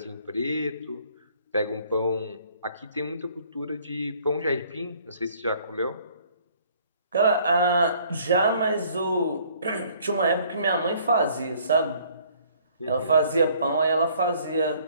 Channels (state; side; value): inverted; both; correlation -0.59